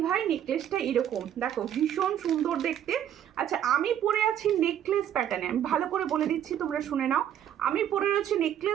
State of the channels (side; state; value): left; quieter; 10.3 dB